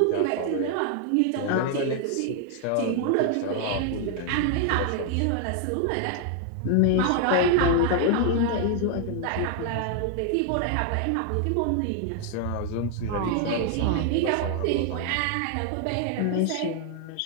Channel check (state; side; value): different; both; correlation 0.00